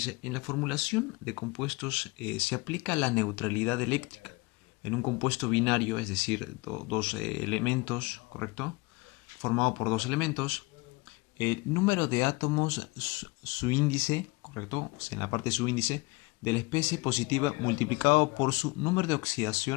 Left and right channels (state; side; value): quieter; right; 24.6 dB